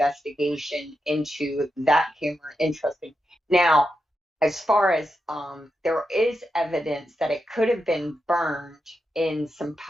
into that camera. Interesting. Now, as far as there is evidence that it could have been burned in some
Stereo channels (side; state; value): both; normal; correlation 0.87